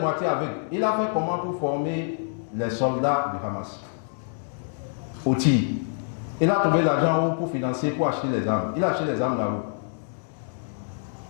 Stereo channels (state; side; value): silent; right; 61 dB below the other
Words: aveugle. Il a fait comment pour former les soldats du Hamas? Au tir. Il a trouvé l'argent où pour financer, pour acheter les armes. Il a acheté les armes là où?